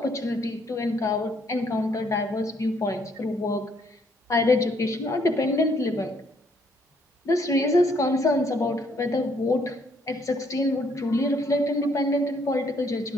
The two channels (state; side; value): normal; both; correlation 0.68